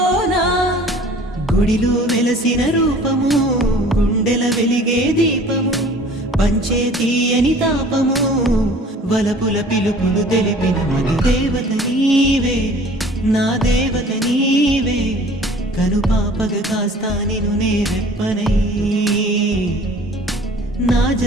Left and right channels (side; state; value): both; normal; correlation 0.48